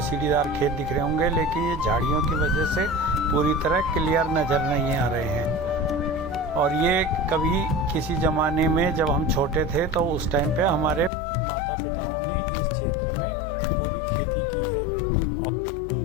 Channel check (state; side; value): drops out; right; at 11.1 s